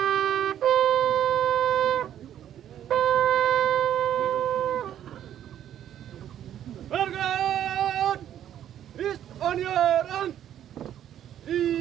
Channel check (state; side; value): quieter; left; 10.7 dB